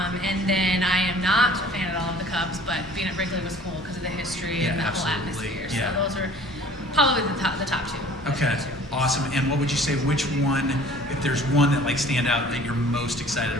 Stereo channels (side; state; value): both; normal; correlation 0.50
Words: then I am not a fan at all of the Cubs, but being at Wrigley was cool because of the history and the whole atmosphere. Yeah. So those are probably the top 2. Okay, awesome. And what would you say, which one, if there's one that stand out that you're most excited